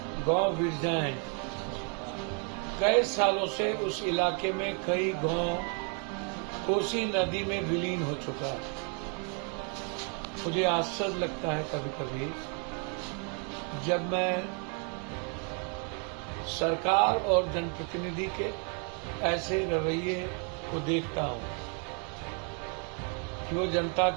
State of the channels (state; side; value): quieter; left; 38.8 dB